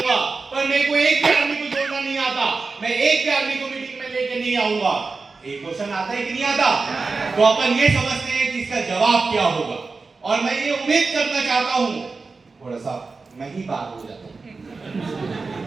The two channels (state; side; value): quieter; left; 4.2 dB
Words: पर मेरे को एक भी आदमी को जोड़ना नहीं आता, मैं एक भी आदमी को मीटिंग में लेके नहीं आऊंगा। एक क्वेश्चन आता है कि नहीं आता? तो अपन ये समझते हैं कि इसका जवाब क्या होगा, और मैं ये उम्मीद करना चाहता हूं, थोड़ा सा मैं ही बात हो जाता हूं,